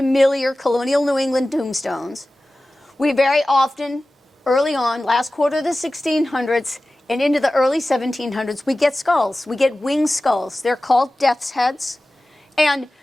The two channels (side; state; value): both; normal; correlation 0.96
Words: colonial New England tombstones, we very often, early on, last quarter of the 1600s, and into the early 1700s, we get skulls. We get winged skulls. They're called death's heads. And